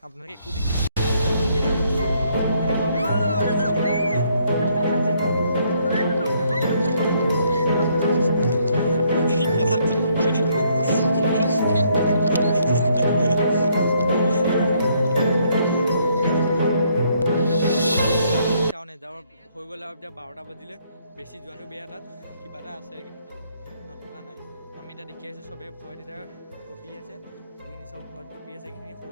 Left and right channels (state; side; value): inverted; both; correlation -0.70